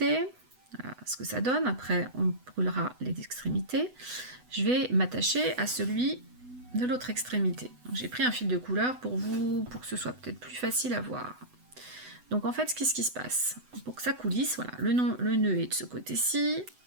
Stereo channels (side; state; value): left; late; 8.0 ms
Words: voilà ce que ça donne, après on brûlera les extrémités. Je vais m'attacher à celui de l'autre extrémité. J'ai pris un fil de couleur pour que ce soit peut-être plus facile à voir. Donc en fait, qu'est-ce qui se passe? Pour que ça coulisse, voilà, le nœud est de ce côté-ci,